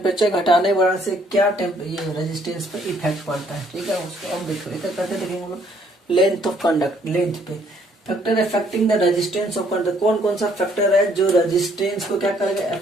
घटाने बढ़ाने से क्या ये रेजिस्टेंस पे इफेक्ट पड़ता है, ठीक है। उसको अब देखो इधर करते देखेंगे हम लोग। लेंथ ऑफ कंडक्ट, लेंथ पे factor affecting the resistance of conductor. कौन कौन सा फैक्टर है जो रेजिस्टेंस को क्या करेगा,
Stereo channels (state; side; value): normal; both; correlation 0.66